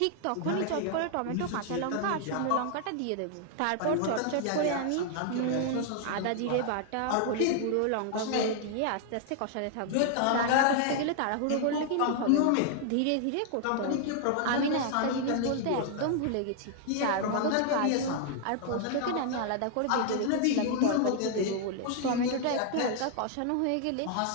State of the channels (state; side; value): different; both; correlation 0.00